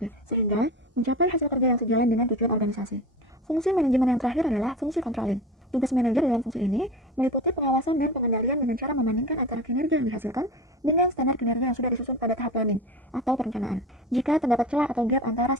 sehingga mencapai hasil kerja yang sejalan dengan tujuan organisasi. Fungsi manajemen yang terakhir adalah fungsi controlling. Tugas manajer dalam fungsi ini meliputi pengawasan dan pengendalian dengan cara membandingkan antara kinerja yang dihasilkan dengan standar kinerja yang sudah disusun pada tahap planning atau perencanaan. Jika terdapat celah atau gap antara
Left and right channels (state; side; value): normal; both; correlation 0.30